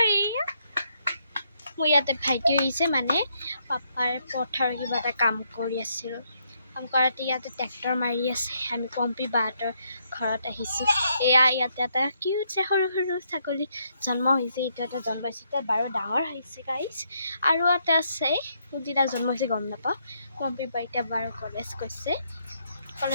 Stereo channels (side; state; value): both; inverted; correlation -0.75